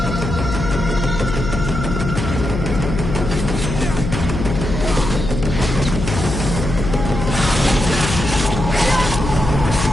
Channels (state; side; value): noise; left; hum, 4 dB below the sound